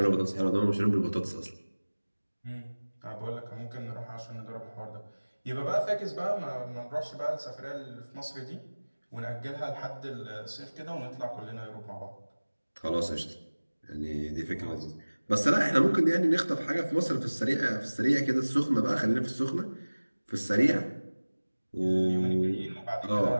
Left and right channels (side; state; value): both; inverted; correlation -1.00